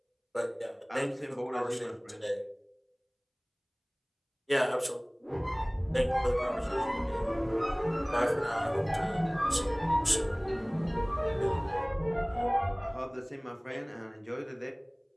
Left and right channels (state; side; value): identical; both; correlation 1.00